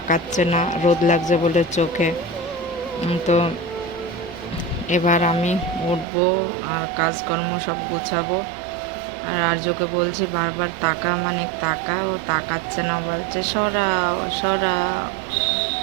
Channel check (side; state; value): left; drops out; at 6.1 s